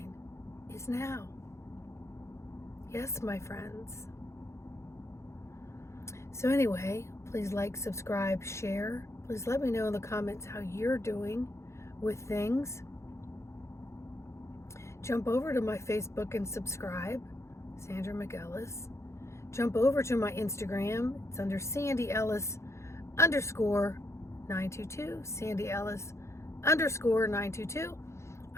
is now. Yes, my friends. So anyway, please like, subscribe, share. Please let me know in the comments how you're doing with things. Jump over to my Facebook and subscribe, Sandra McEllis. Jump over to my Instagram. It's under Sandy Ellis _922, Sandy Ellis _922.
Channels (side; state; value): right; late; 0.13 ms